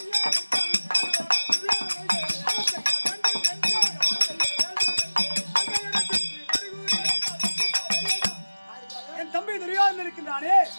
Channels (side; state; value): both; inverted; correlation -1.00